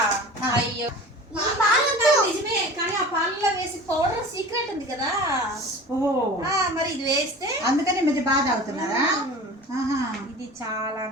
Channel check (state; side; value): normal; both; correlation 0.38